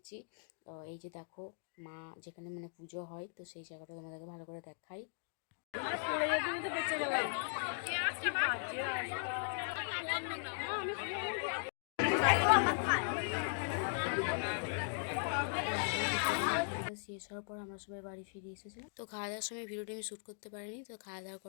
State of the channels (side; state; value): right; silent; digital silence